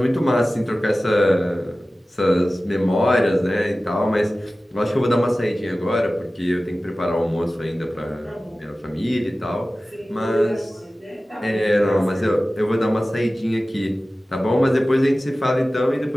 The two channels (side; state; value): both; normal; correlation 0.96